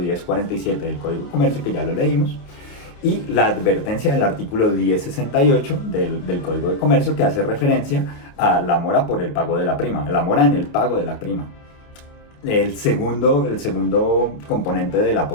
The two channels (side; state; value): right; late; 28 ms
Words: del Código de Comercio, que ya lo leímos, y la advertencia del artículo 1068 del Código de Comercio, que hace referencia a la mora por el pago de la prima, la mora en el pago de la prima. El segundo componente de la